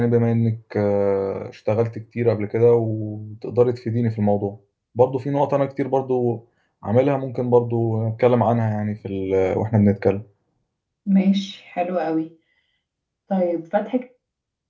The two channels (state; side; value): identical; both; correlation 1.00